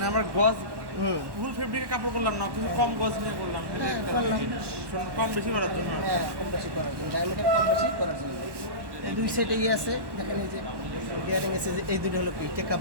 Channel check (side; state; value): left; late; 1.1 ms